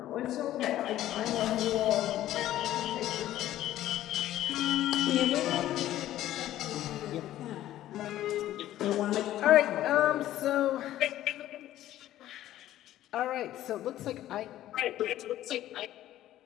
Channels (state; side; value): quieter; right; 13.5 dB